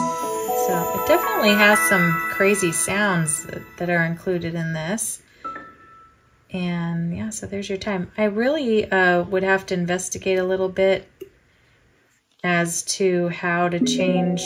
So it definitely has some crazy sounds that are included in this. And yeah, so there's your time. I really would have to investigate a little bit as to how to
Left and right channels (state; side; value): identical; both; correlation 1.00